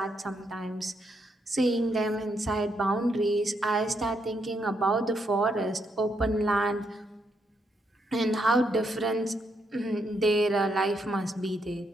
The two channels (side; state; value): both; normal; correlation 0.77